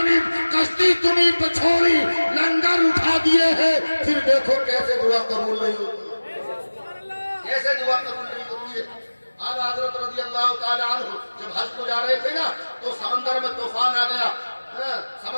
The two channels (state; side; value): inverted; both; correlation -1.00